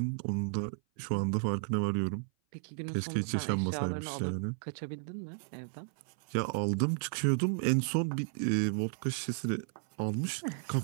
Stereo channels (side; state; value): left; silent; 55 dB below the other